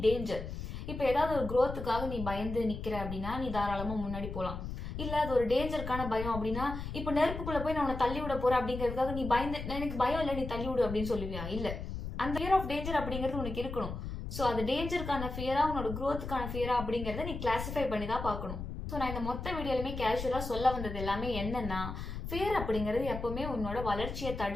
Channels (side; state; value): left; noise; rumble, 7 dB below the sound